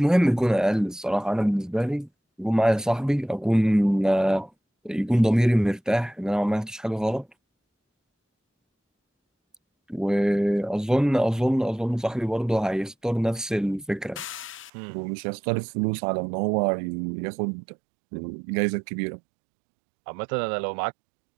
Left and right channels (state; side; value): drops out; left; at 14.7 s